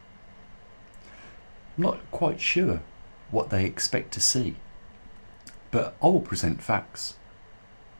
I'm not quite sure what they expect to see, but I will present facts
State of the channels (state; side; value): inverted; both; correlation -1.00